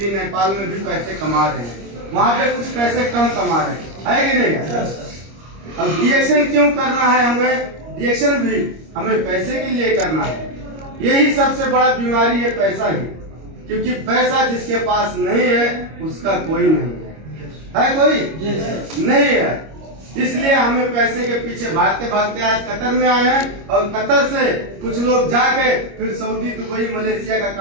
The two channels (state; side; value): late; left; 25 ms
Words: नेपाल में भी पैसे कमा रहे हैं, वहाँ पे कुछ पैसे कम कमा रहे हैं, है कि नहीं? अब रिएक्शन क्यों करना है हमें? रिएक्शन भी हमें पैसे के लिए करना है। यही सबसे बड़ा बीमारी है, पैसा ही। क्योंकि पैसा जिसके पास नहीं है उसका कोई नहीं है कोई नहीं है। इसलिए हमें पैसे के पीछे भागते भागते आज कतर में आए हैं। और कतर से कुछ लोग जाके फिर सऊदी, दुबई, मलेशिया का